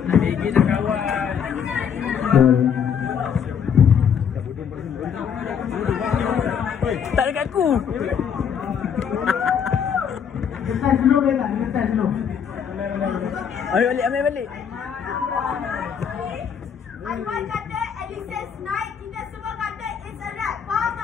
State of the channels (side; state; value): right; quieter; 7.6 dB